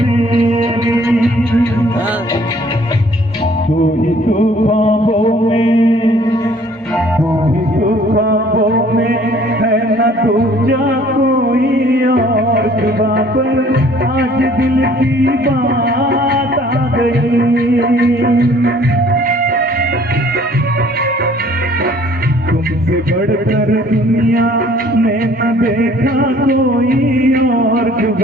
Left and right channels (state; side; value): normal; both; correlation 0.56